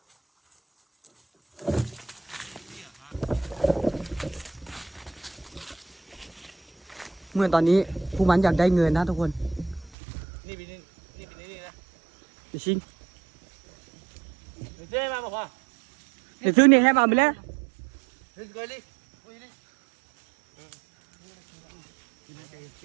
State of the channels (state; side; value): drops out; left; at 9.9 s